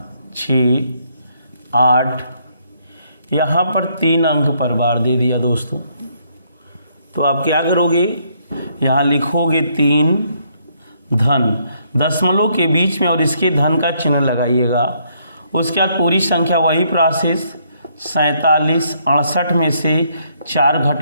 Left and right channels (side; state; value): both; inverted; correlation -0.71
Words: यहाँ पर 3 अंक पर बार दे दिया दोस्तों। तो आप क्या करोगे, यहाँ लिखोगे 3 धन, दशमलव के बीच में और इसके धन का चिन्ह लगाइएगा। उसके बाद पूरी संख्या वही प्रोसेस, 47 68 में से 4